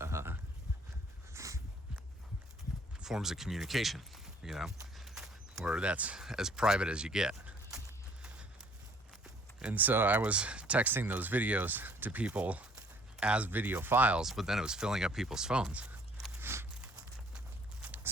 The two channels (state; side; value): normal; both; correlation 0.58